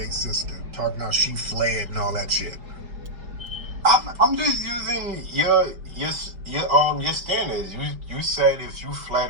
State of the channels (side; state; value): left; late; 5.0 ms